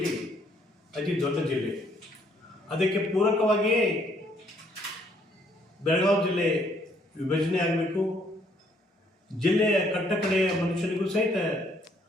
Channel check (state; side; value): normal; both; correlation 0.67